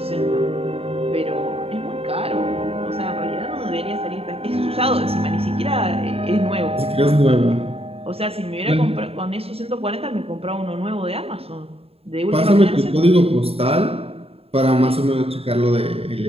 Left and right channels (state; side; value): late; left; 0.28 ms